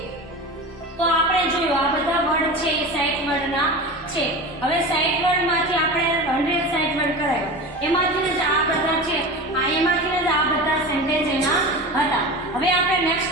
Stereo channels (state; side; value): normal; both; correlation 0.30